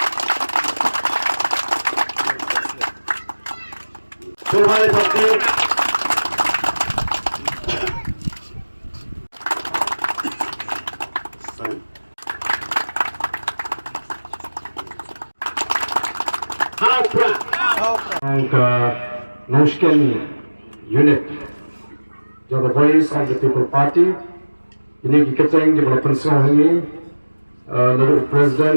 angka Noshken unit, the voice of the people party. Ini kita yang development ini, lalu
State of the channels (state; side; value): inverted; both; correlation -1.00